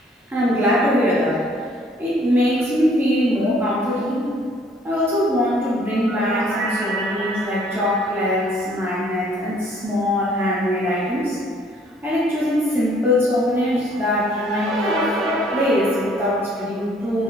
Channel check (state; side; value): normal; both; correlation 0.60